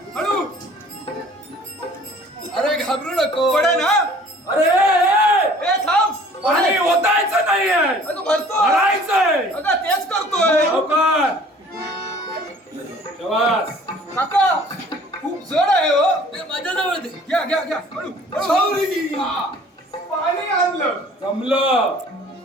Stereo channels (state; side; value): normal; both; correlation 0.51